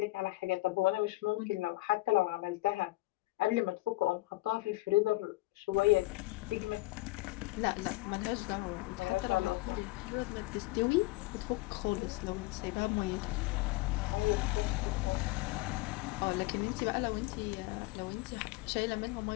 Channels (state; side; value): quieter; right; 20.2 dB